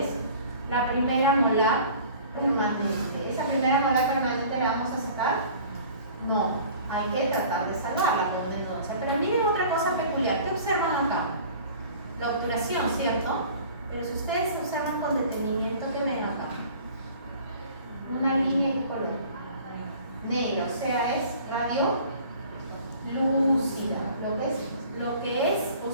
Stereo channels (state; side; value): inverted; both; correlation -0.47